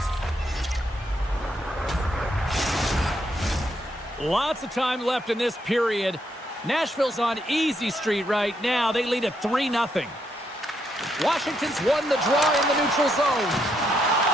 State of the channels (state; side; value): normal; both; correlation 0.77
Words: Lots of time left in this period. Nashville's on easy street right now. They lead at 3-0. Washington's won the draw in the neutral zone.